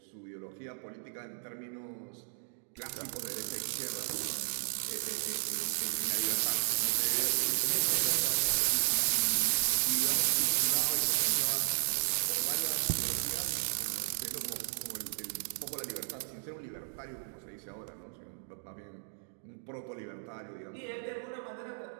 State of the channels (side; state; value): left; silent; digital silence